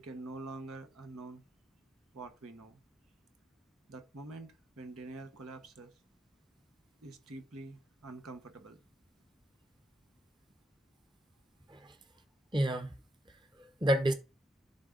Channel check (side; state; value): both; normal; correlation 0.80